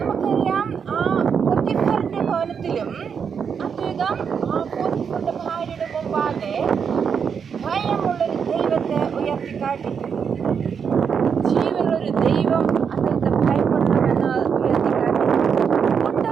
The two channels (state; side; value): quieter; left; 6.8 dB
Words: ആ പോത്തിഫറിൻ്റെ ഭവനത്തിലും അദ്ദേഹം ആ പോത്തിഫറിൻ്റെ ഭാര്യയുടെ മുമ്പാകെ ഭയമുള്ളൊരു ദൈവത്തെ ഉയർത്തിക്കാട്ടി. ജീവനുള്ളൊരു ദൈവം അദ്ദേഹത്തെ ഭയപ്പെടണമെന്ന് ഉയർത്തിക്കാട്ടി.